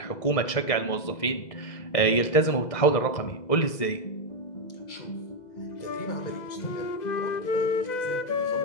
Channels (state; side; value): late; right; 2.0 ms